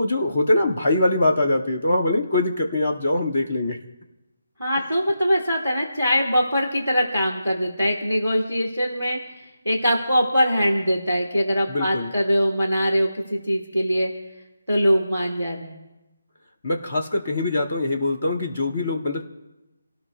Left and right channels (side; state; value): both; inverted; correlation -0.86